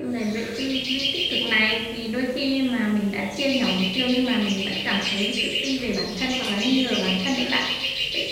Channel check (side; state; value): both; identical; correlation 1.00